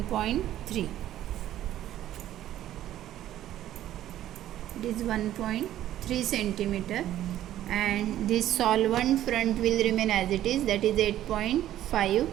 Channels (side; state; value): left; quieter; 12.7 dB